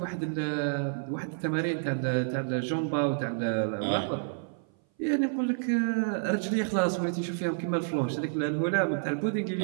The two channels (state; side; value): silent; left; 57 dB below the other